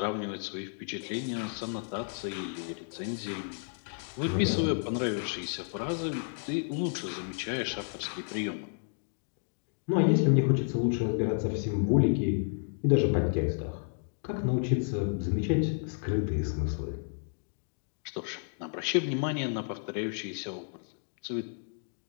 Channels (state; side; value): silent; right; digital silence